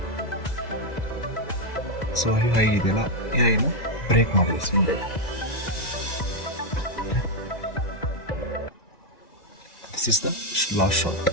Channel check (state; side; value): late; right; 2.0 ms